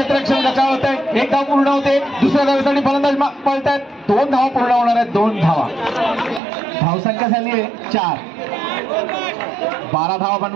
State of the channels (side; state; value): left; drops out; at 6.4 s